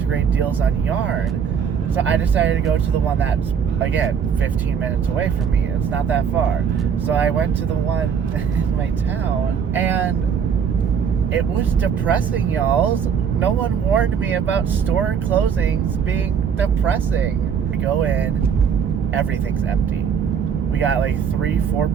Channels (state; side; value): quieter; left; 7.2 dB